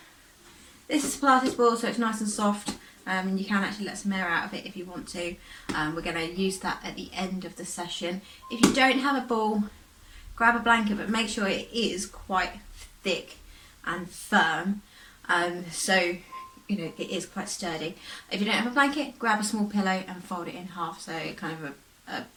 this is Pilates ball, so it's nice and soft, and you can actually let some air out of it if you want to. We're going to use that at the end of the session. If you don't have a ball, grab a blanket, but make sure it is quite thick and firm, so you know it is quite sturdy. If you don't have a blanket, grab a small pillow and fold it in half, so kind of a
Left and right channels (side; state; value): both; identical; correlation 1.00